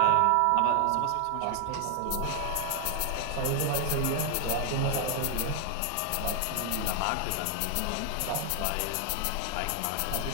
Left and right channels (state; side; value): different; both; correlation 0.00